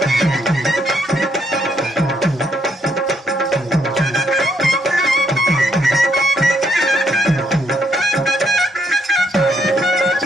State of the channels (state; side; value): normal; both; correlation 0.74